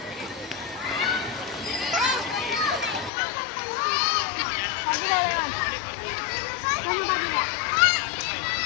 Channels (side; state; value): right; drops out; at 3.1 s